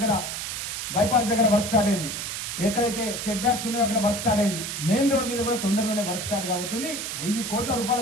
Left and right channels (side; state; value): right; noise; hiss, 5 dB below the sound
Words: బైపాస్ దగ్గర వర్క్ స్టార్ట్ అయింది. ఎక్కడైతే సెట్ బ్యాక్స్ ఉన్నాయో అక్కడ వర్క్ స్టార్ట్ అయింది. మెయిన్ రోడ్ మీద కూడా తొందరలోనే వర్క్ స్టార్ట్ కాబోతుంది. 1000 కోట్ల